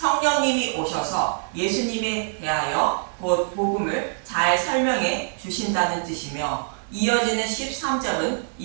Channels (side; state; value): left; silent; digital silence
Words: 오셔서 예수님에 대하여 곧 복음을 잘 설명해 주신다는 뜻이며 이어지는 13절은